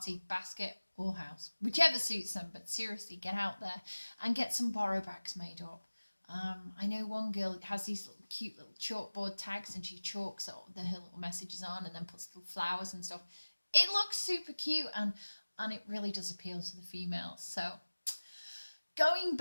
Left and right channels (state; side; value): inverted; both; correlation -1.00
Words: basket or house, whichever suits them. But seriously, get out there and get some borrow bags made up. I know one girl has these little cute little chalkboard tags, and she chalks her little messages on and then puts little flowers and stuff. It looks super cute, and it really does appeal to the females. So going